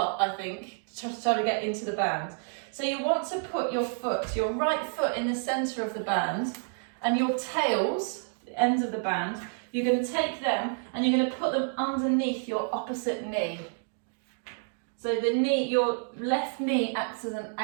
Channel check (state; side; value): silent; left; 57 dB below the other